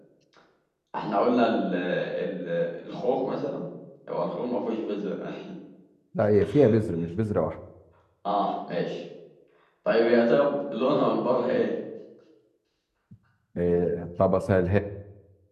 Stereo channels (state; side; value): identical; both; correlation 1.00